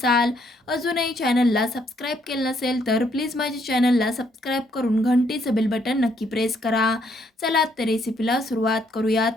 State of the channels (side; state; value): both; normal; correlation 0.70